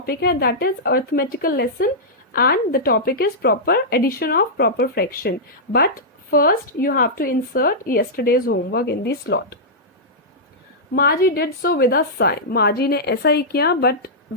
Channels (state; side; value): normal; both; correlation -0.11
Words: है that is arithmetical lesson and the topic is proper addition of proper fraction, but first you have to insert yesterday's homework in the slot. Margie did so with a sigh. Margie ने ऐसा ही किया but